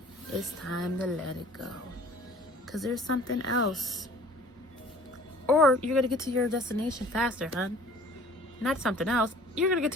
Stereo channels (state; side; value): normal; both; correlation 0.50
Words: it's time to let it go, because there's something else. Or you're gonna get to your destination faster, hun. Not something else. You're gonna get